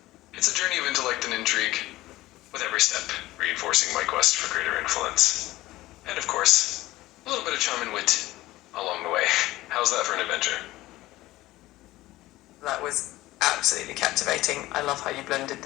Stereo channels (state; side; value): quieter; right; 17.4 dB